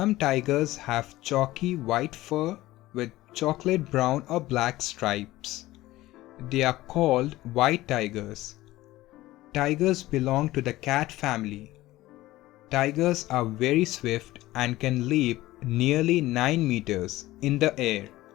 tigers have chalky white fur with chocolate brown or black stripes. They are called white tigers. Tigers belong to the cat family. Tigers are very swift and can leap nearly 9 meters in the air.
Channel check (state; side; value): quieter; right; 17.1 dB